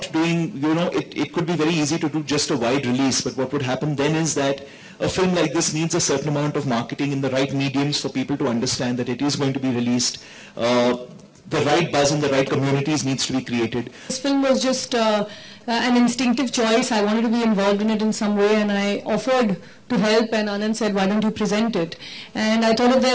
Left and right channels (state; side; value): identical; both; correlation 1.00